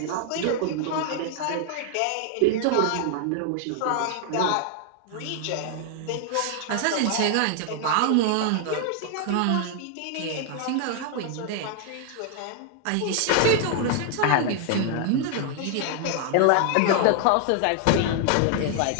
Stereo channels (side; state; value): both; different; correlation 0.00